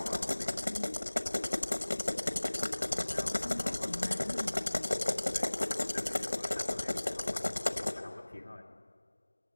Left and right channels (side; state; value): both; inverted; correlation -1.00